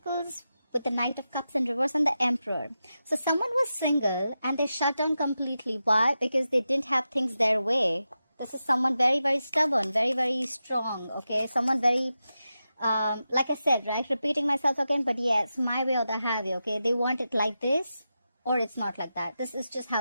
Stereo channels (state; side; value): inverted; both; correlation -0.90